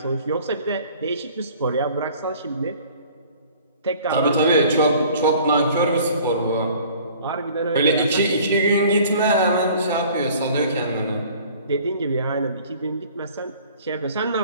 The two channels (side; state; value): both; inverted; correlation -0.50